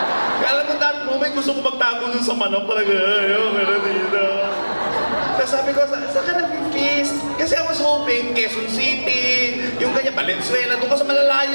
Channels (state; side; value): inverted; both; correlation -1.00